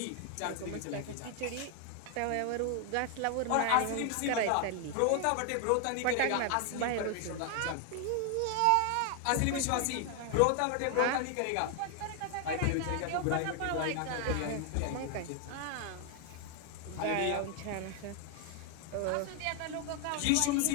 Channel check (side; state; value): both; different; correlation 0.00